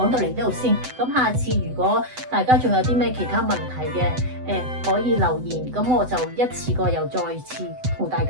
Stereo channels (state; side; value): late; left; 7.9 ms